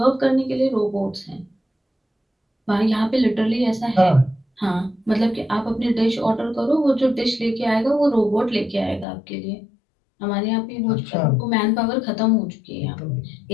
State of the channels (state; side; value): drops out; right; at 9.1 s